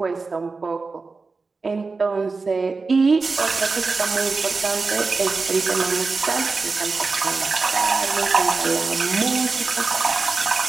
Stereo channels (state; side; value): quieter; left; 4.1 dB